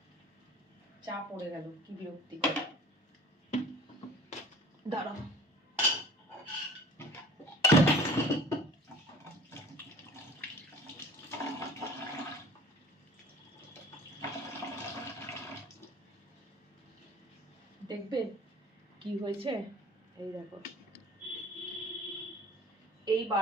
চা পড়ে গেল, কি বিরক্তিকর। দাঁড়াও, দেখবে কি হয়েছে। এই দেখো, এই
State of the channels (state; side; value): normal; both; correlation 0.45